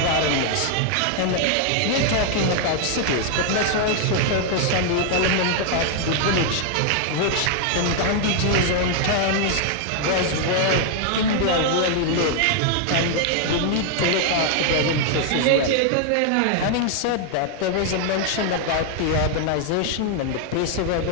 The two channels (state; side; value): different; both; correlation 0.00